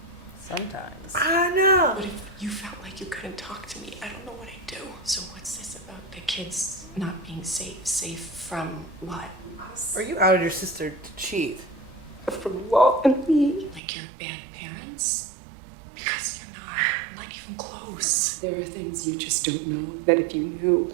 Sometimes. I know. But if you felt like you couldn't talk to me, I don't know what I'd do. So what's this about the kids not being safe? Safe from what? Us? Or you outed your sister to cheat? From Walt and me. Like you're bad parents? Because you're not even close. There are things you just don't know that if you knew,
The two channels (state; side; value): drops out; left; at 13.8 s